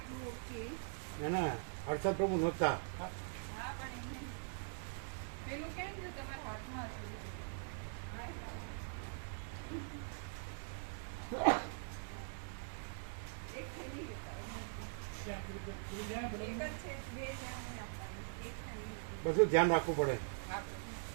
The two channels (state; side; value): silent; left; digital silence